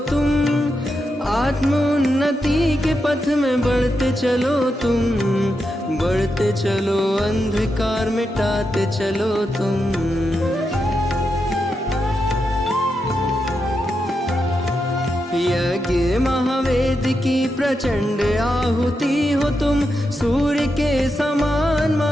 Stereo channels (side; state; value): both; normal; correlation 0.86